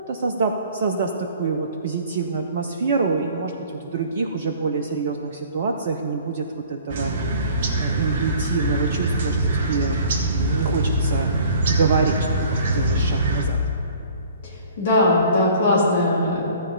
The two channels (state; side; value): inverted; both; correlation -0.51